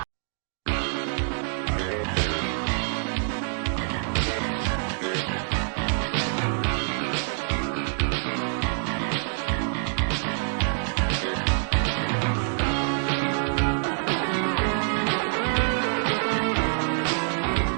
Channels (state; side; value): silent; left; digital silence